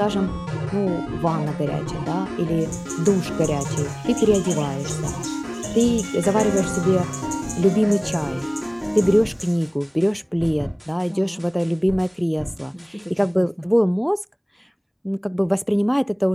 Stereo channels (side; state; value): both; identical; correlation 1.00